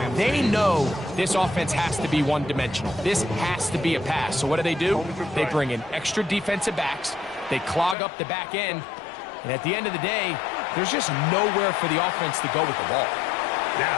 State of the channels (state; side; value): drops out; right; at 8.0 s